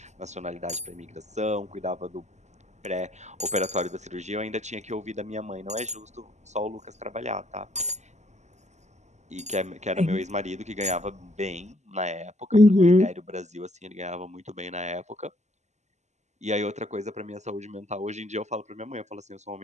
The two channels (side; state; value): left; late; 0.33 ms